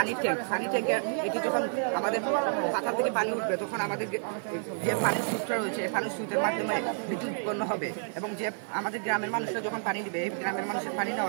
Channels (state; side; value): silent; left; digital silence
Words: ট্যাঙ্কে। এটি যখন আমাদের পাতা থেকে পানি উঠবে তখন আমাদের যে পানির সুইচটা রয়েছে এই পানির সুইচের মাধ্যমে বিদ্যুৎ উৎপন্ন হবে। এবং যে আমাদের গ্রামের মানুষরা যখন পানি দিবে, এই গ্রামের মানুষের পানি